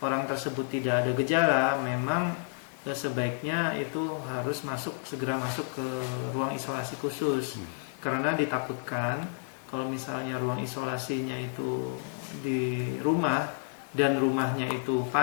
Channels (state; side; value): silent; right; digital silence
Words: orang tersebut tidak ada gejala, memang sebaiknya itu harus segera masuk ke ruang isolasi khusus, karena ditakutkan kalau misalnya ruang isolasinya itu di rumah dan rumahnya itu